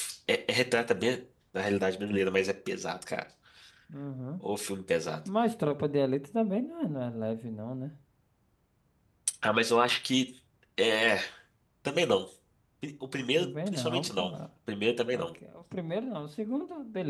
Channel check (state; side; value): identical; both; correlation 1.00